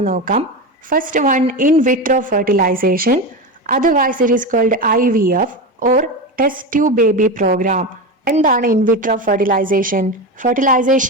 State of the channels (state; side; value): normal; both; correlation 0.20